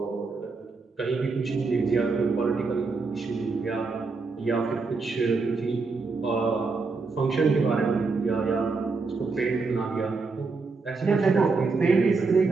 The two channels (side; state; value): left; quieter; 4.2 dB